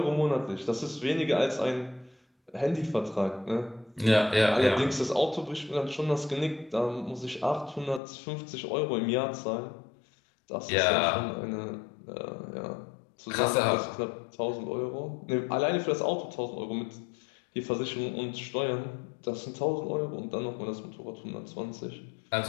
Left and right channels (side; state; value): right; drops out; at 8.0 s